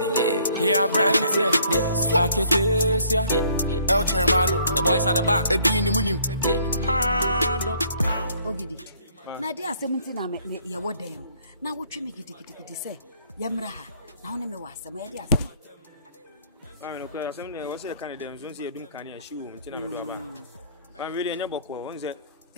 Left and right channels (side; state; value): both; inverted; correlation -0.62